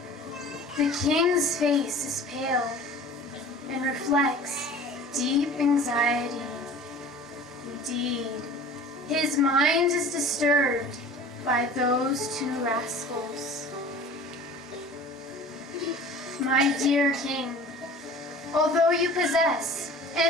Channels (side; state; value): both; normal; correlation 0.42